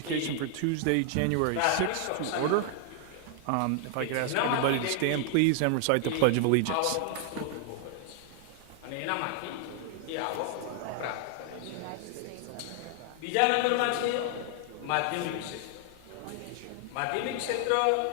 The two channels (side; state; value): both; different; correlation 0.00